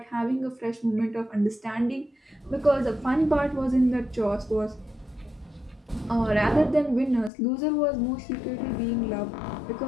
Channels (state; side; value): drops out; right; at 7.3 s